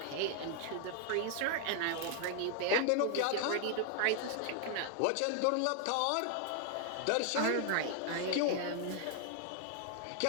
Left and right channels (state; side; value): different; both; correlation 0.00